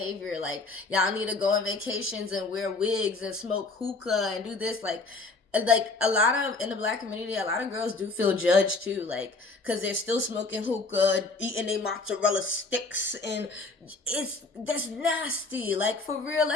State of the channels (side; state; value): right; quieter; 3.6 dB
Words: Like y'all need to go on vacations and wear wigs and smoke hookah and do this. Like a lot of in the black community, a lot of girls do feel judged too. Like because they're still smoking hookah, eating their mozzarella sticks, and that's nasty. Like for real,